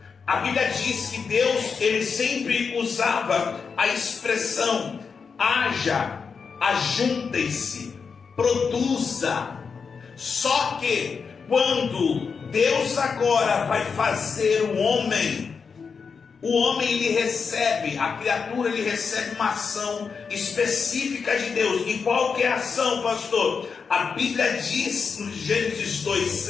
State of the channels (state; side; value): quieter; right; 5.6 dB